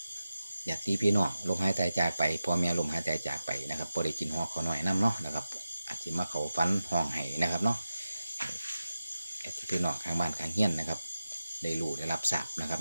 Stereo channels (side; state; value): both; inverted; correlation -0.93